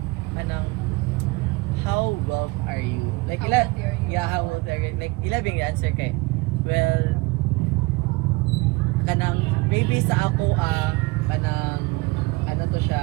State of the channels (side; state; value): left; quieter; 23.4 dB